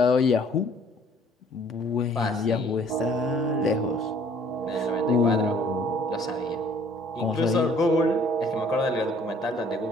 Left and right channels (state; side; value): normal; both; correlation 0.58